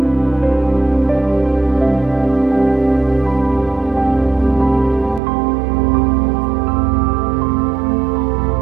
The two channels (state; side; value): drops out; left; at 5.2 s